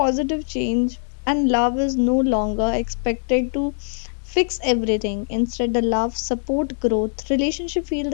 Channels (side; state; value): right; silent; digital silence